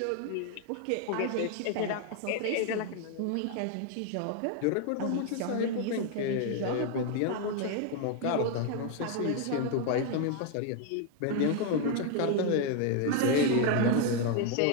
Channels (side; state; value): both; different; correlation 0.01